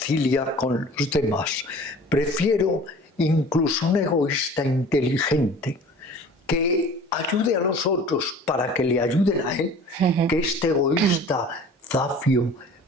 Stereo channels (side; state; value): both; normal; correlation 0.45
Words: con los demás. Prefiero incluso un egoísta inteligente que ayude a los otros para que le ayuden a él, que este egoísta zafio,